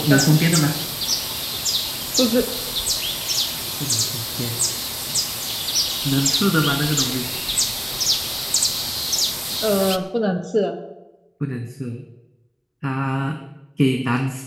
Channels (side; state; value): both; identical; correlation 1.00